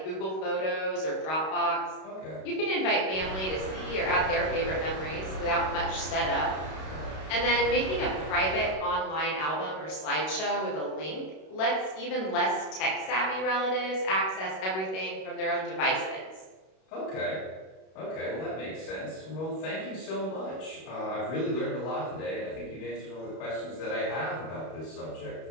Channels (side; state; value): right; late; 32 ms